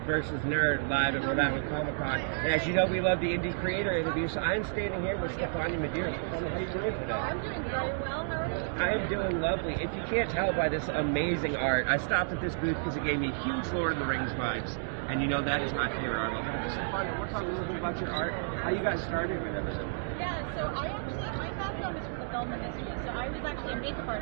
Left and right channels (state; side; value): silent; left; digital silence